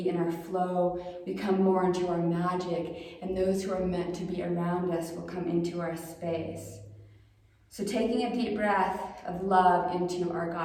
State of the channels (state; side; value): identical; both; correlation 1.00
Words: in our flow, we come more into our magic, and those who are meant to be around us will come into our space. So taking a deep breath of love into our